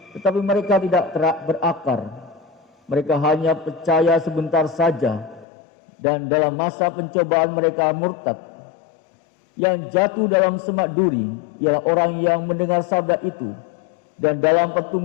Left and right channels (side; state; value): right; drops out; at 5.5 s